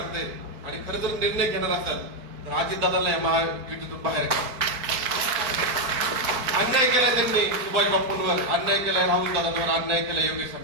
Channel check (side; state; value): left; late; 4.6 ms